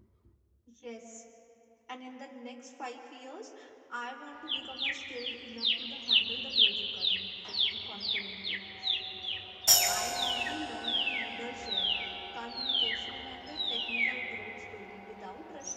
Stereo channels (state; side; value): identical; both; correlation 1.00